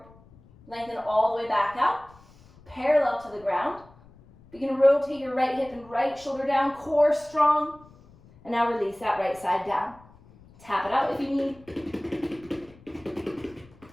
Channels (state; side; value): noise; left; rumble, 25 dB below the sound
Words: Lengthen all the way back out, parallel to the ground. Begin to rotate your right hip and right shoulder down, core strong. And now release that right side down. Tap it out if you need.